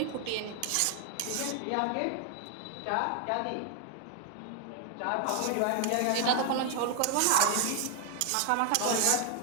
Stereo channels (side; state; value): both; different; correlation 0.00